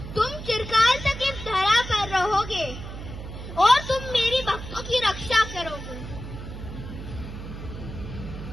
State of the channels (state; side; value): noise; right; hum, 10 dB below the sound